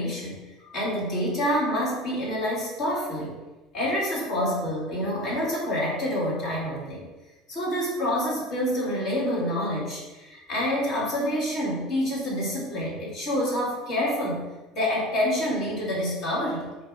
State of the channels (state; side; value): normal; both; correlation 0.31